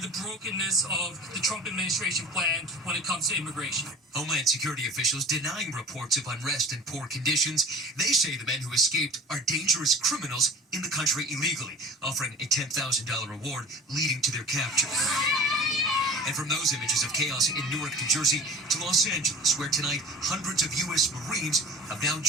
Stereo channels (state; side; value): normal; both; correlation 0.40